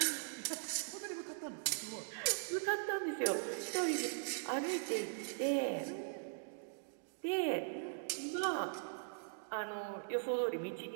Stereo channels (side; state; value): left; silent; digital silence